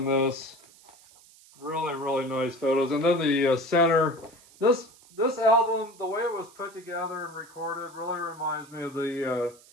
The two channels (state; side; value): noise; right; hiss, 25 dB below the sound